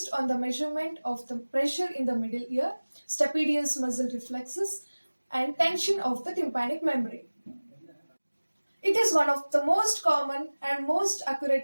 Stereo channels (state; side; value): inverted; both; correlation -1.00